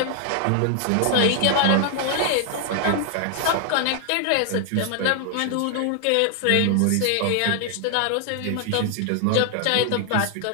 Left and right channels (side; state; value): both; different; correlation 0.00